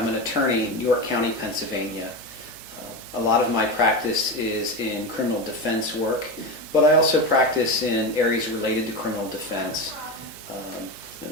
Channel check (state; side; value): noise; right; hum, 26 dB below the sound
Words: an attorney in York County, Pennsylvania. A lot of my practice is in criminal defense work, but I also practice in areas related to criminal defense.